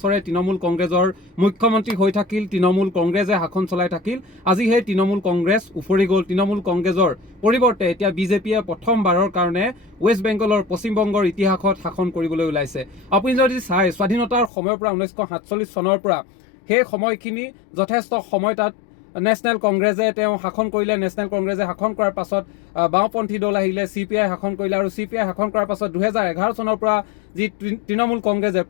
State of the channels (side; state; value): right; drops out; at 14.5 s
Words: তৃণমূল কংগ্ৰেছৰ মুখ্যমন্ত্ৰী হৈ থাকিল, তৃণমূল কংগ্ৰেছে শাসন চলাই থাকিল। আজি সেই তৃণমূল কংগ্ৰেছ উফৰি গ'ল। তৃণমূল কংগ্ৰেছৰ পৰিৱৰ্তে এতিয়া বিজেপিয়ে প্ৰথমবাৰৰ কাৰণে ৱেষ্ট বেংগলৰ পশ্চিমবংগৰ ইতিহাসত শাসন কৰিবলৈ ওলাইছে। আপুনি যদি চাই স্বাধীনতাৰ সময়ৰ পৰা 1947 চনৰ পৰা সেই সময়খিনি যথেষ্ট সময় তাত নেশ্যনেল কংগ্ৰেছে তেওঁ শাসন কৰিলে। নেশ্যনেল কংগ্ৰেছে শাসন কৰাৰ পাছত বাওঁপন্থী দল আহিলে, CPI শাসন কৰিলে আৰু CPI শাসন কৰাৰ পাছত 2011 চনৰ পৰা যি তৃণমূল কংগ্ৰেছে